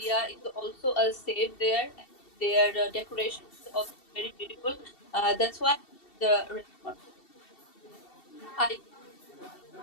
is also safe there. And their decoration is also very beautiful. That's why the restaurant. I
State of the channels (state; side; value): late; right; 2.7 ms